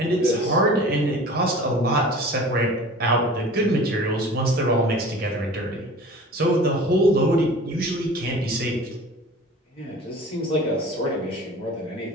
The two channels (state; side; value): normal; both; correlation 0.42